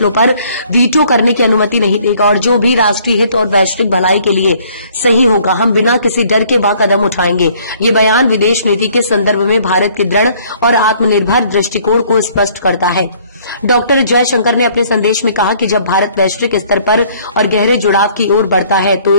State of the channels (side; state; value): both; inverted; correlation -0.60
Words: पर वीटो करने की अनुमति नहीं देगा और जो भी राष्ट्रीय हित और वैश्विक भलाई के लिए सही होगा, हम बिना किसी डर के वह कदम उठाएंगे। ये बयान विदेश नीति के संदर्भ में भारत के दृढ़ और आत्मनिर्भर दृष्टिकोण को स्पष्ट करता है। डॉक्टर जयशंकर ने अपने संदेश में कहा कि जब भारत वैश्विक स्तर पर और गहरे जुड़ाव की ओर बढ़ता है तो